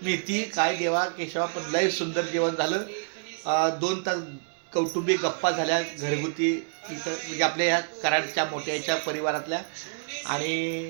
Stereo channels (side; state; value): left; silent; digital silence